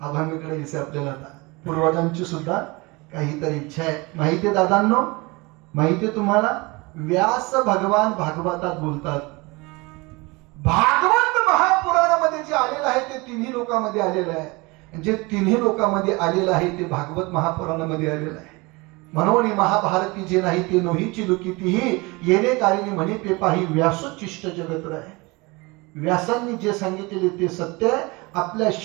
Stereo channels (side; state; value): left; quieter; 25.2 dB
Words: आभामीकडे दिसे आपल्याला आता पूर्वजांची सुद्धा काहीतरी इच्छा आहे. माहितीये दादांनो, माहितीये तुम्हाला, व्यास भगवान भागवतात बोलतात. भागवत महापुराणामध्ये जे आलेलं आहे ते तिन्ही लोकांमध्ये आलेलं आहे. जे तिन्ही लोकांमध्ये आलेलं आहे ते भागवत महापुराणामध्ये आलेलं आहे. म्हणून महाभारती जे नाही ते नोहीची लुकितीही येणे कारिणी म्हणे ते पाही व्यासोच्चिष्ट जगत आहे. व्यासांनी जे सांगितलेले ते सत्य आहे. आपल्या